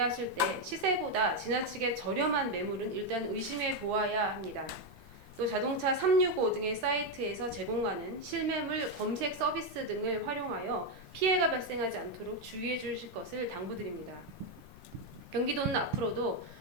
때 시세보다 지나치게 저렴한 매물은 일단 의심해 보아야 합니다. 또 자동차 365 등의 사이트에서 제공하는 실매물 검색 서비스 등을 활용하여 피해가 발생하지 않도록 주의해 주실 것을 당부드립니다. 경기도는 앞으로도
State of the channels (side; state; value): both; normal; correlation 0.05